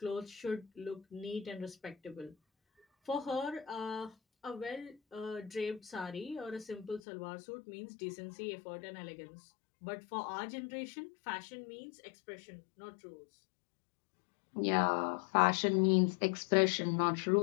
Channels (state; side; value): drops out; right; at 7.0 s